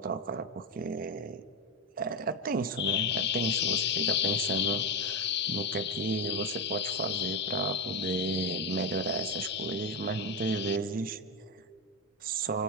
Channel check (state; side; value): normal; both; correlation 0.11